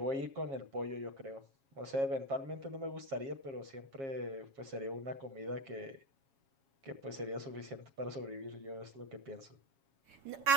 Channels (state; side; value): late; left; 7.3 ms